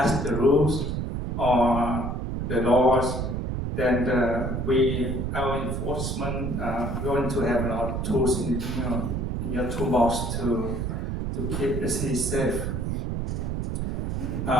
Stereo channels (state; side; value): noise; right; rumble, 2 dB below the sound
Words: the rules or the laws, then our enforcement going to have a lot of tools in your toolbox to keep the city safe.